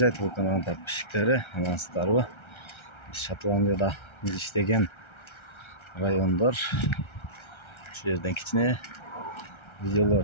telekanalının tatbişikleri. Amansızlarбы? Şotlandiyada biz işlеген rayonlar. Şu yerden kichine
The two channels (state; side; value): late; right; 1.3 ms